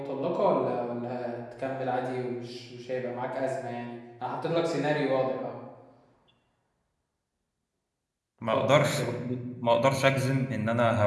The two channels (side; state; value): both; identical; correlation 1.00